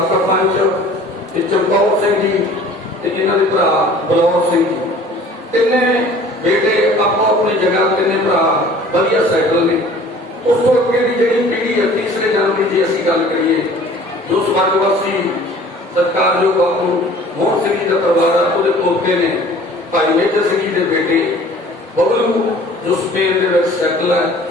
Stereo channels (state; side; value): normal; both; correlation 0.49